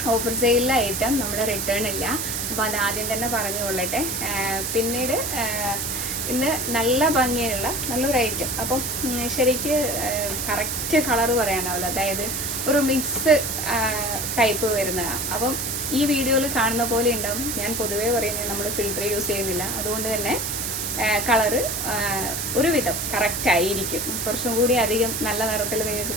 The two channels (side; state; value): right; noise; hiss, 2 dB below the sound